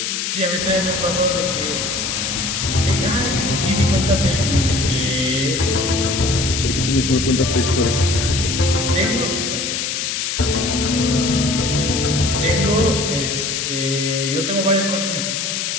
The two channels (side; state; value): left; noise; hiss, 2 dB below the sound